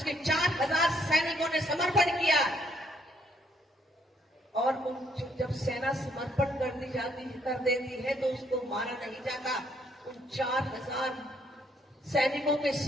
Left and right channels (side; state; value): both; normal; correlation 0.69